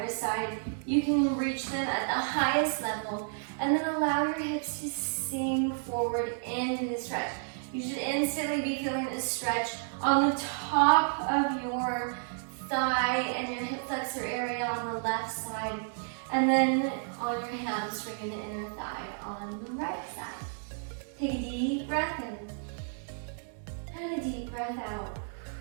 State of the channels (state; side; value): silent; left; digital silence